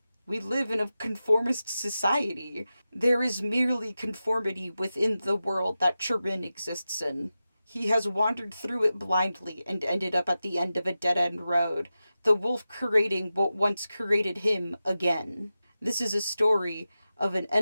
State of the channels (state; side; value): inverted; both; correlation -0.93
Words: We live in a conformist society. There is merely conformity within the world that Chirin exists in. He has wandered through it blindly and ended up at the end of a dead end road, the wolf creating what once created him again. This is a story of an